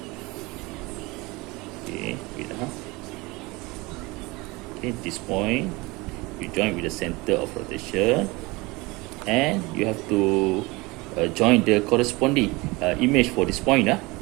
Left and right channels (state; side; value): quieter; left; 23.6 dB